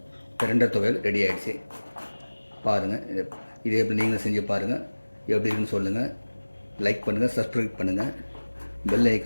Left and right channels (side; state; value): both; inverted; correlation -1.00